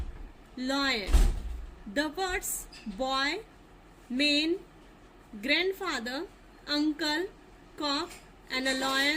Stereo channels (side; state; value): both; identical; correlation 1.00